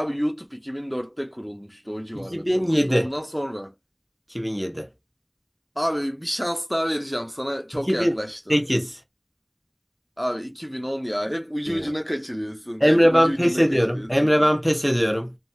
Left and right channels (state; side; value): identical; both; correlation 1.00